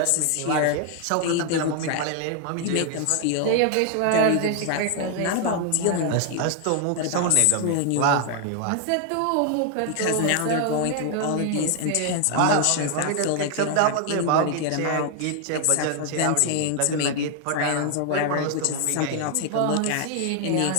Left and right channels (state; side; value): different; both; correlation 0.00